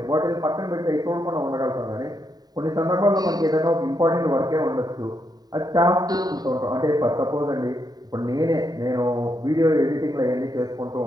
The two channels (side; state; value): left; late; 0.19 ms